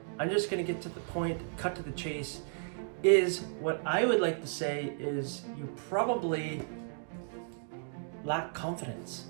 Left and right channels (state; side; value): silent; left; digital silence